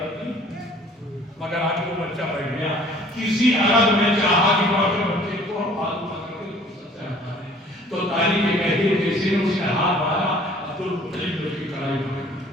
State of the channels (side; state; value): both; normal; correlation 0.53